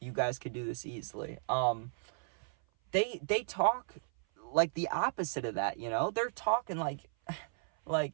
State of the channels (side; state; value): left; silent; 55 dB below the other